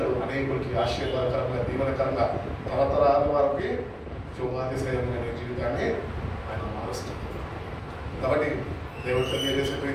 అనేకులకి ఆశీర్వాదకరంగా, దీవెనకరంగా, తరతరాల వారికి శుభాతిశయమైన జీవితాన్ని ఆయన మారుస్తాడు. కాబట్టి దేవుడు తెలియజేసే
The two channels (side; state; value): both; identical; correlation 1.00